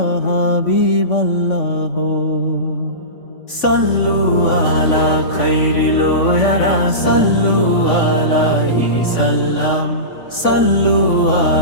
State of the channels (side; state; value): right; late; 3.5 ms